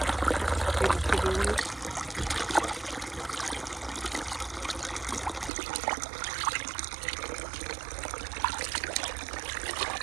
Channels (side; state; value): left; drops out; at 5.5 s